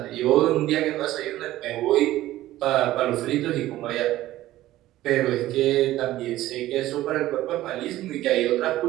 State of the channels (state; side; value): quieter; left; 15.2 dB